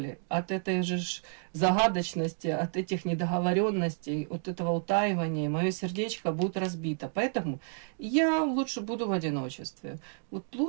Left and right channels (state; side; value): silent; left; digital silence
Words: от этой же загадочности, от этих недоговоренностей, от этого утаивания. Мое сердечко будет разбито. Поэтому я лучше буду в одиночестве. Вот